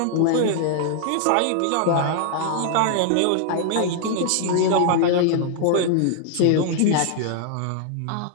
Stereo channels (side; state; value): both; different; correlation -0.01